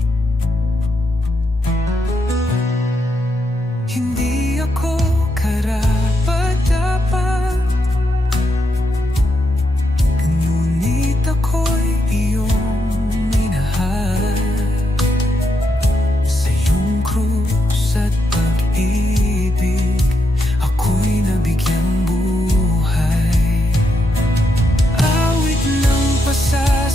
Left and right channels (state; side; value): normal; both; correlation 0.82